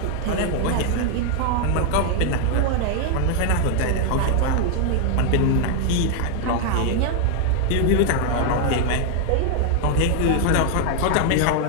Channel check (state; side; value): different; both; correlation 0.00